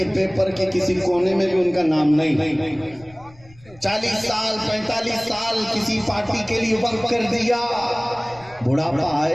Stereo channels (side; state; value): left; noise; rumble, 25 dB below the sound